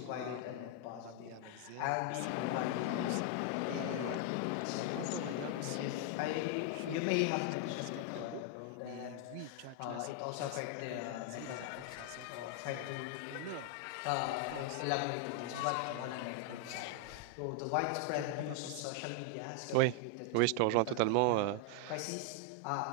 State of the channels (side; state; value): both; different; correlation 0.00